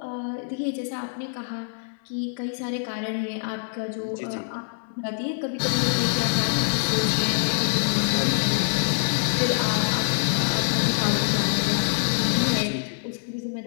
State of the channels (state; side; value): silent; right; digital silence